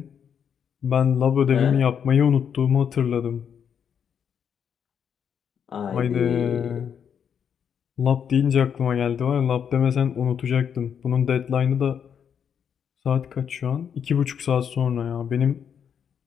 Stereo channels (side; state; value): right; quieter; 7.8 dB